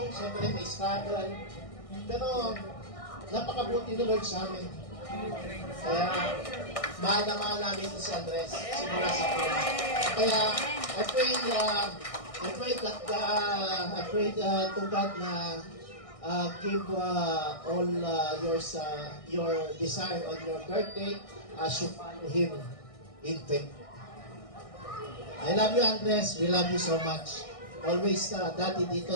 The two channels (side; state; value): right; late; 1.6 ms